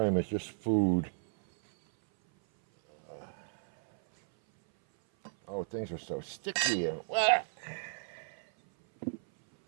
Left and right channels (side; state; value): left; silent; 56 dB below the other